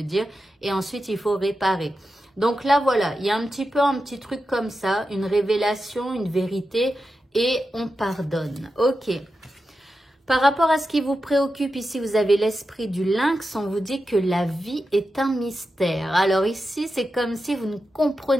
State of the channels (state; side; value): normal; both; correlation 0.90